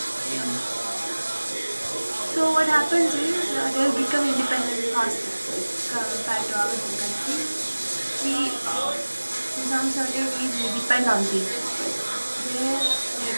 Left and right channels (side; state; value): both; inverted; correlation -1.00